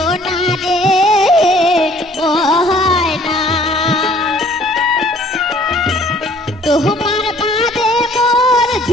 রে ও হয় না তোমার বাদে মোর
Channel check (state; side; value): normal; both; correlation 0.57